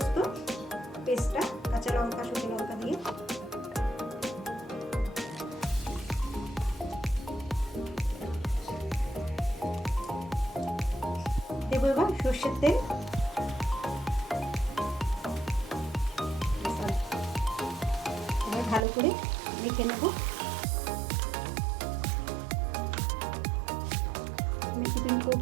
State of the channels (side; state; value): left; drops out; at 18.9 s